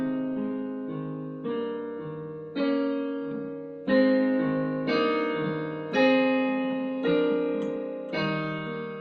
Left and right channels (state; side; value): identical; both; correlation 1.00